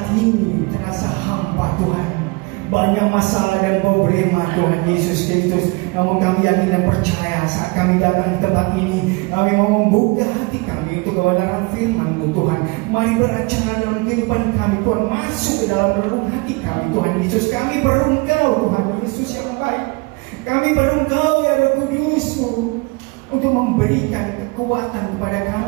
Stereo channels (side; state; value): left; quieter; 27.1 dB